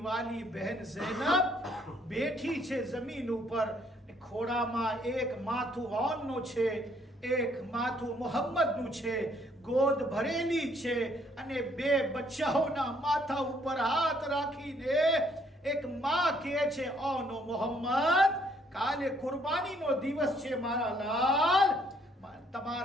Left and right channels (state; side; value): normal; both; correlation 0.66